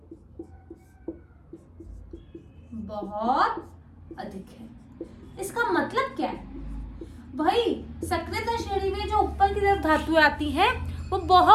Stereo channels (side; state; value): both; identical; correlation 1.00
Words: बहुत अधिक है। इसका मतलब क्या है भाई, सक्रियता श्रेणी में जो ऊपर की तरफ धातुएं आती हैं वो